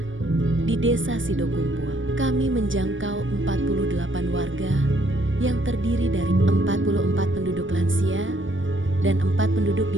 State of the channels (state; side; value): late; left; 0.56 ms